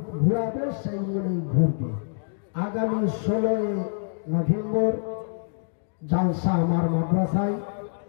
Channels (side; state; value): right; silent; digital silence